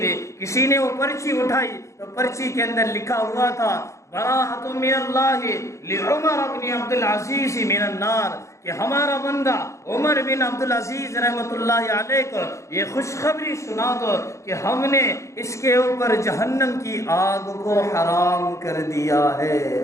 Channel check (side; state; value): right; late; 0.14 ms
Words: کسی نے وہ پرچی اٹھائی تو پرچی کے اندر لکھا ہوا تھا، براءۃ من اللہ لعمر بن عبدالعزیز من النار، کہ ہمارا بندہ عمر بن عبدالعزیز رحمۃ اللہ علیہ کو یہ خوشخبری سنا دو کہ ہم نے اس کے اوپر جہنم کی آگ کو حرام کر دیا